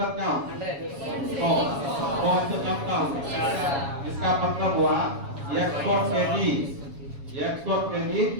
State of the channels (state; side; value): late; left; 7.2 ms